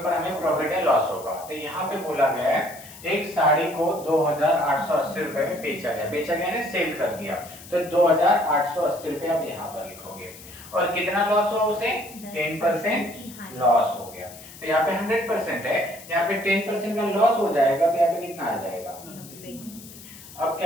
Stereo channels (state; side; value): noise; left; hiss, 17 dB below the sound